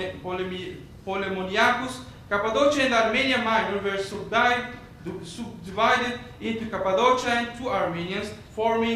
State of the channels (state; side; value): identical; both; correlation 1.00